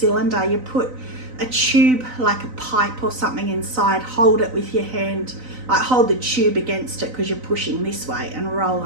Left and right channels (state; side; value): late; left; 3.9 ms